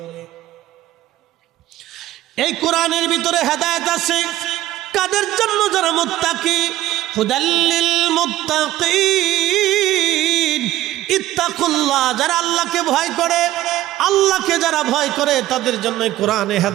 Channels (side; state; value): left; quieter; 15.0 dB